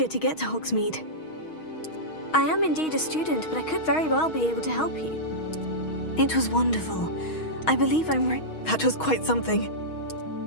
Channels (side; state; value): right; late; 6.3 ms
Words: to get to Hogsmeade. I am indeed a student, but I could very well be able to help you. It was wonderful. I believe I'm right. That was quite something.